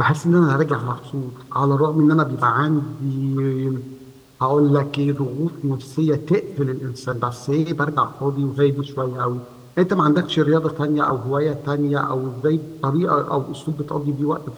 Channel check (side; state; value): both; identical; correlation 1.00